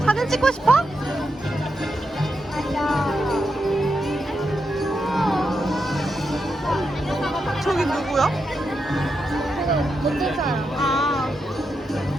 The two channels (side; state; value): both; normal; correlation 0.85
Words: 사진 찍고 싶어? 저기 누구야? 어떤 사람? 아,